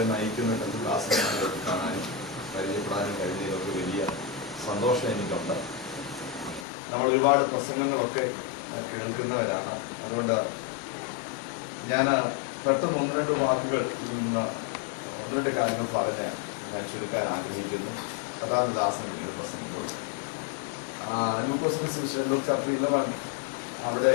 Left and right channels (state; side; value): drops out; right; at 6.7 s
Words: നയിക്കുന്ന കർത്തൃദാസന്മാരെ കാണാനും പരിചയപ്പെടാനും കഴിഞ്ഞതിലൊക്കെ വലിയ സന്തോഷം എനിക്കുണ്ട്. നമ്മൾ ഒരുപാട് പ്രസംഗങ്ങളൊക്കെ കേൾക്കുന്നവരാണ്. അതുകൊണ്ട് ഞാൻ പെട്ടെന്ന് ഒന്ന് രണ്ട് വാക്കുകൾ ഒന്ന് രണ്ട് കാര്യങ്ങൾ പറഞ്ഞ് ഞാൻ ചുരുക്കാൻ ആഗ്രഹിക്കുന്നു. കഥാദാസൻ പിന്നീട് പ്രസംഗിക്കുള്ളൂ. ലൂക്കോസ് ചാപ്റ്റർ 11